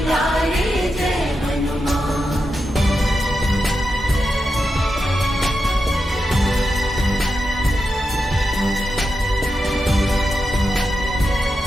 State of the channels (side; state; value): both; normal; correlation 0.88